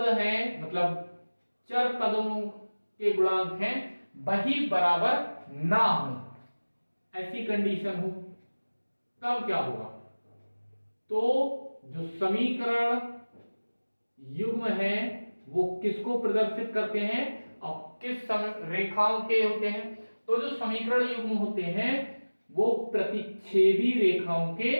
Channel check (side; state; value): both; inverted; correlation -1.00